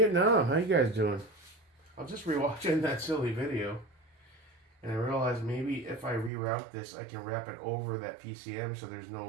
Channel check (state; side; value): drops out; left; at 6.3 s